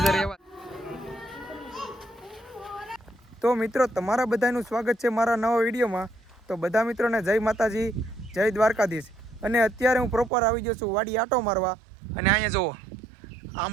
એવા તો મિત્રો તમારા બધાનું સ્વાગત છે મારા નવા વિડીયોમાં તો બધા મિત્રોને જય માતાજી જય દ્વારકાધીશ અને અત્યારે હું પ્રોપર આવી ગયો છું વાડી આટો મારવા અને અહીંયા જુઓ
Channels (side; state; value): left; drops out; at 10.3 s